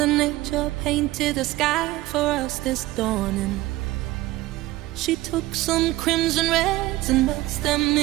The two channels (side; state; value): left; quieter; 17.7 dB